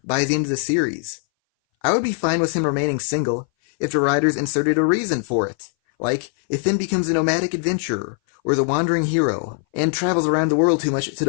by the end of the series. I would be fine with him remaining single if the writers inserted a reason for it, like if Finn becomes a nomadic adventurer or the wandering hero and travels around the world too much to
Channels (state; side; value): silent; right; 60 dB below the other